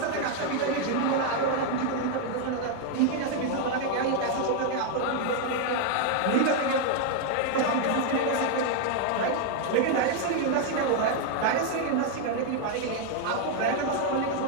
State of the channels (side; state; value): both; different; correlation 0.00